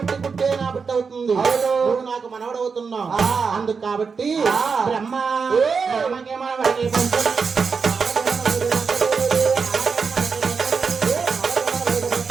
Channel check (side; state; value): left; quieter; 5.4 dB